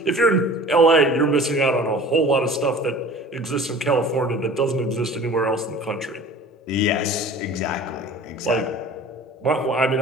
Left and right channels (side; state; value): both; normal; correlation 0.43